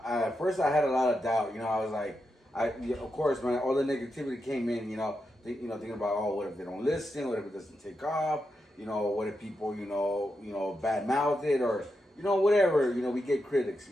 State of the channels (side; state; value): both; normal; correlation 0.86